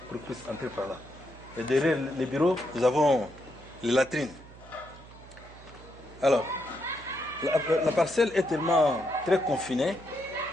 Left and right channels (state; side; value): noise; right; hum, 20 dB below the sound